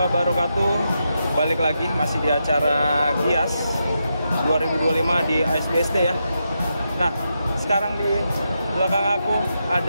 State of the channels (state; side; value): inverted; both; correlation -0.85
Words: Balik lagi masih di acara Gias 2025 di ASBSD ya. Nah, sekarang di belakang aku